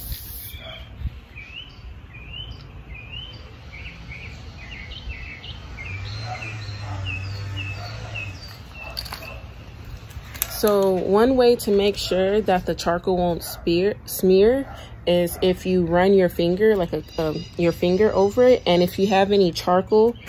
So one way to make sure that the charcoal won't smear is if you run your finger, like your finger over it, and if you have any charcoal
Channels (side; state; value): both; identical; correlation 1.00